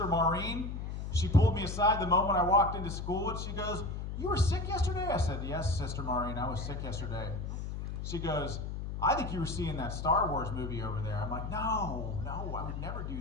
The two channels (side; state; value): left; noise; hum, 5 dB below the sound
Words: Maureen, she pulled me aside the moment I walked into school, and she goes, "You were sick yesterday?" I said, "Yes, Sister Maureen, I was sick yesterday." She goes, "I think you were seeing that Star Wars movie over there." I'm like, no, I would never do